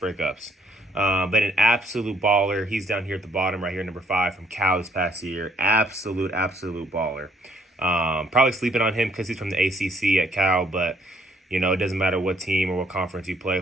But an absolute baller. He's down here at the bottom right here, number 5 from Cal this past year. Absolute baller. Probably sleeping on him because he's from the ACC at Cal, but, you know, it doesn't matter what team or what conference you play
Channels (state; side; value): normal; both; correlation 0.66